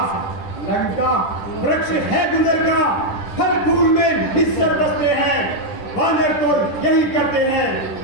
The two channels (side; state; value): right; late; 10 ms